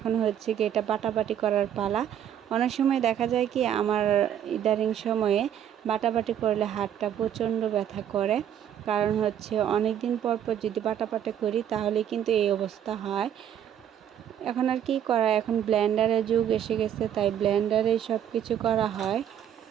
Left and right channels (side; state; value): left; quieter; 9.9 dB